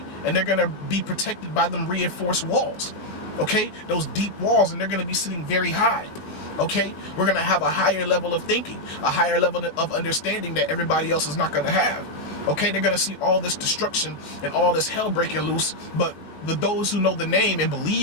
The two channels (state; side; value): late; right; 19 ms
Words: and they're going to be protected by them reinforced walls. Okay, those deep walls, and they're going to be sitting very high. Okay, we're going to have a higher level of thinking, a higher level of understanding that everybody else is not going to have. Okay, they're going to see all this destruction and all this hell breaking loose, but those who know the name and